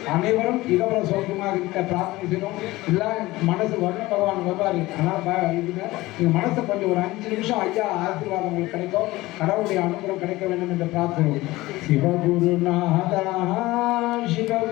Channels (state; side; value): quieter; right; 19.0 dB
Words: அனைவரும் இகவர சோகமாக இருக்க பிரார்த்தனை செய்கிறோம். எல்லாம் மனசு வருண பகவான் வருவார். ஆனால் இதுங்க நீங்கள் மனசை கொஞ்சம் ஒரு 5 நிமிஷம் ஐயா ஆசீர்வாதம் உங்களுக்கு கிடைக்கும். கடவுளுடைய அனுகிரகம் கிடைக்க வேண்டும் என்று பிரார்த்தனை. சிவகுருநாதா